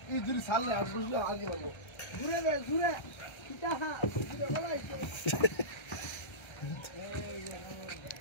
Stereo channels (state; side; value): late; right; 1.3 ms